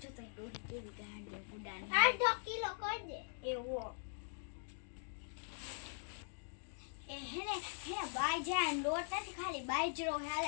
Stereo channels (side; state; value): right; silent; digital silence